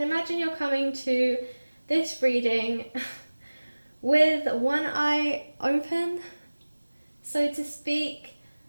imagine you're coming to this reading with one eye open, so to speak.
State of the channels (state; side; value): inverted; both; correlation -1.00